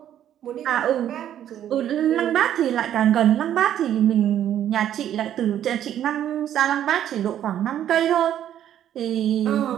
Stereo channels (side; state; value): left; quieter; 10.8 dB